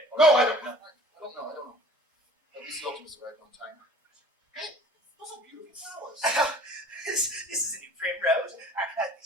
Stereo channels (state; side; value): normal; both; correlation 0.48